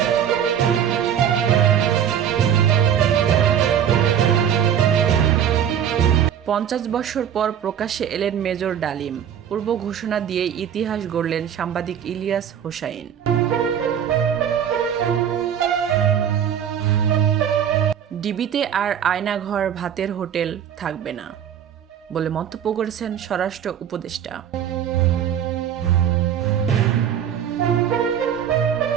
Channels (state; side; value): quieter; left; 9.0 dB